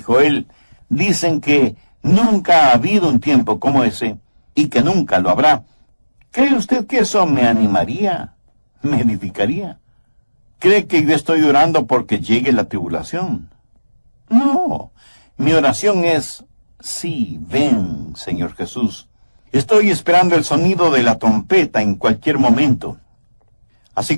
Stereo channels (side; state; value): both; inverted; correlation -1.00